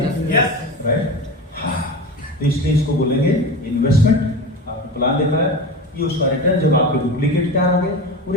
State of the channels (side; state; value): both; normal; correlation 0.28